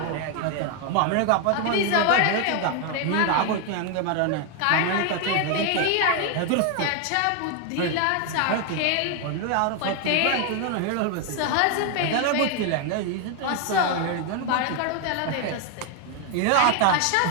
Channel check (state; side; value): different; both; correlation 0.01